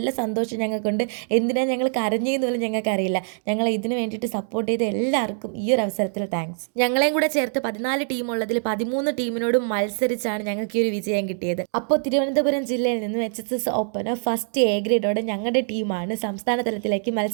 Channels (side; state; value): left; silent; digital silence